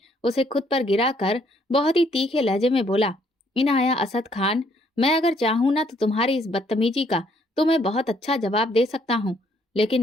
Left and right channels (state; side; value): normal; both; correlation 0.67